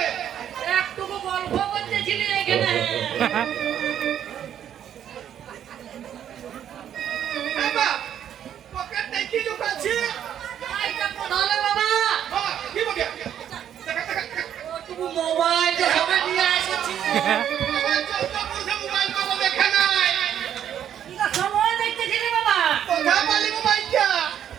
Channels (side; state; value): left; quieter; 9.9 dB